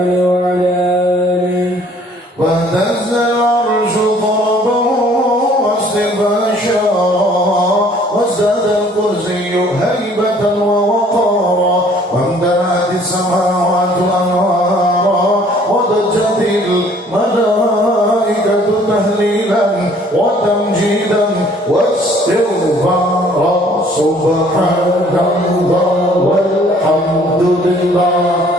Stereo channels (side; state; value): both; normal; correlation 0.57